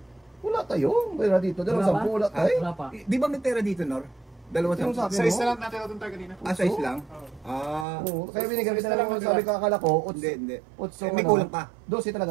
Wala tayo. Wala dito. 10 wala tayo. Wala pa. Di ba may pera dito, Nor? 2-10. Yung sa akin, Size no? na lang natin ito tayo kanina. Size lang? Oo. Oo. Kaya binigyan kita na lang sabi ka akala ko. Hindi. 8 May kulang pa. 12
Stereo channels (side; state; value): left; drops out; at 7.9 s